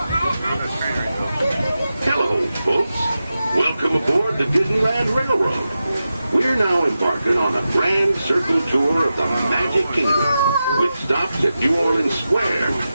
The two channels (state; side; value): inverted; both; correlation -0.91